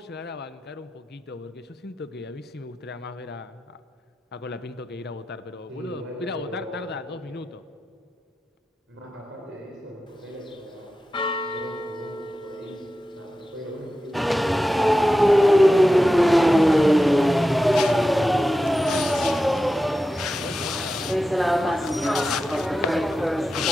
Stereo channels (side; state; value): both; normal; correlation 0.92